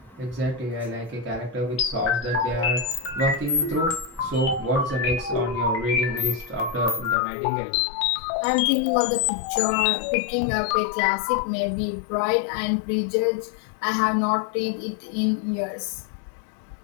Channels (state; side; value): drops out; right; at 7.2 s